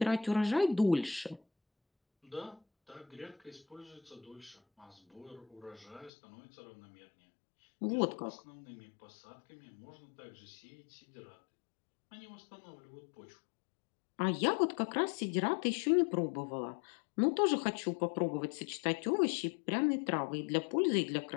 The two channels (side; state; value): right; drops out; at 6.1 s